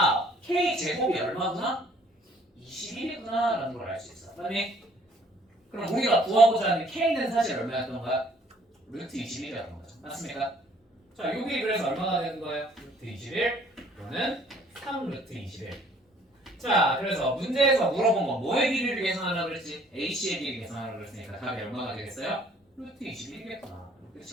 k 제곱이 얼마구나? 21이구나 라는 걸 알 수 있어. 그다음에 그럼 우리가 구하고자 하는 k는 사실 얼마였던 거야? 루트 21이었던 거죠. 맞습니까? 자, 여기 그래서 얼마가 되는 거예요? 루트 21 또는 3 루트 21. 자, 그래서 문제에서 물어본 건 뭐의 길이를 계산하라고 그랬지? AC의 길이 계산하라고 그랬으니까 답이 얼마가 되겠어요? 루트 21이겠구나.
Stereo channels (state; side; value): normal; both; correlation 0.59